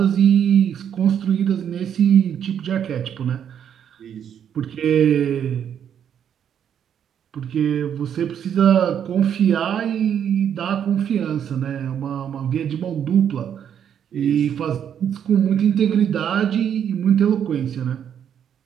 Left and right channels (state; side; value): quieter; left; 8.8 dB